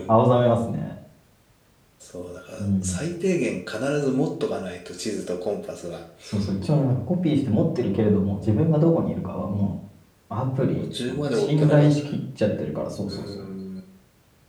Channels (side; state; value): both; identical; correlation 1.00